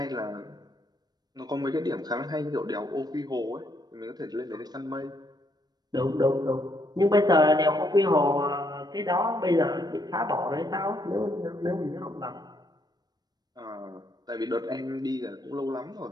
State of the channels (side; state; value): left; late; 0.19 ms